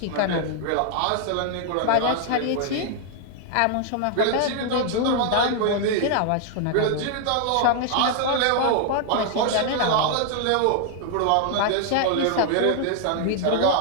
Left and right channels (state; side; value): different; both; correlation 0.00